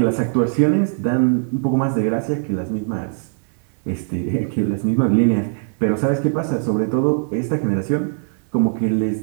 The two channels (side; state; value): left; silent; digital silence